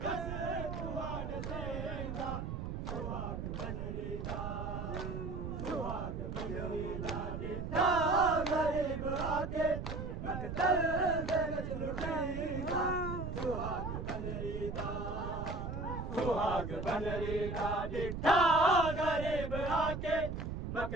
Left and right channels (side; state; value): right; noise; rumble, 5 dB below the sound